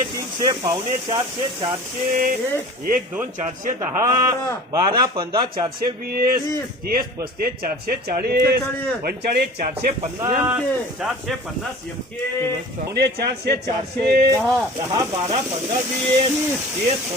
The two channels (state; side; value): normal; both; correlation 0.41